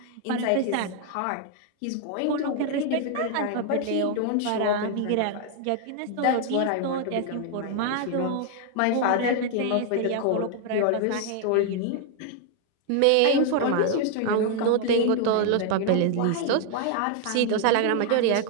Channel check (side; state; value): both; different; correlation 0.00